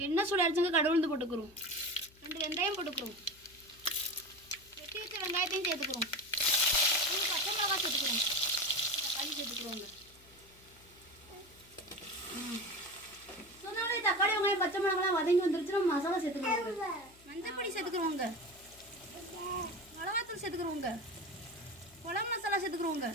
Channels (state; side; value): noise; left; hum, 26 dB below the sound